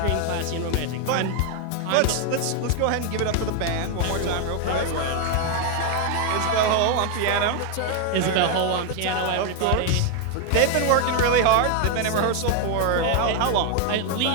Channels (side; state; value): both; different; correlation 0.01